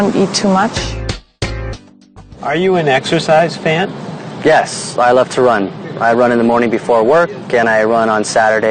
eat too much. Are you an exercise fan? Yes, I love to run. I run in the morning before work, and I run on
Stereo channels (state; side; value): identical; both; correlation 1.00